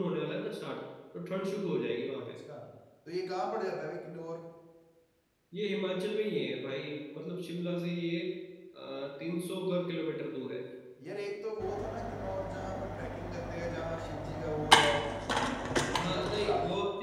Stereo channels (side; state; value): both; identical; correlation 1.00